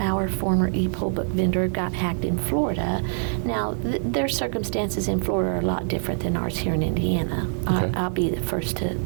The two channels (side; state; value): left; silent; digital silence